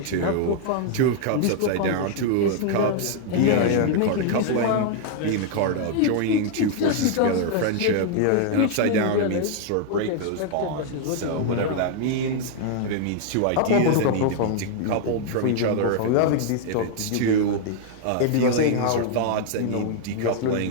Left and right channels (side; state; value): both; different; correlation 0.00